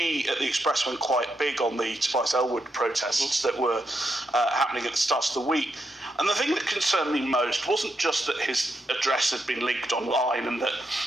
at the Express went quite big on the Tobias Ellwood protests that were happening at the start of the week. And the thing that concerned me most wasn't just that his address had been leaked online and that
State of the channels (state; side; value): normal; both; correlation 0.82